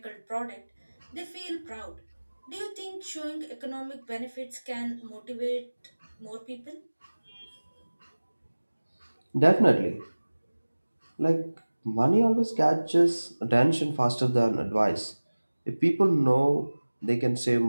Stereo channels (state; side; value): inverted; both; correlation -1.00